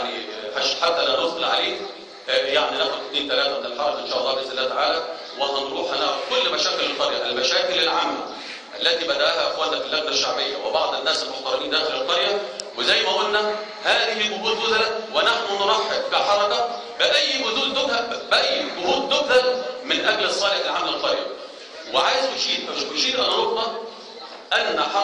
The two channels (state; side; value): identical; both; correlation 1.00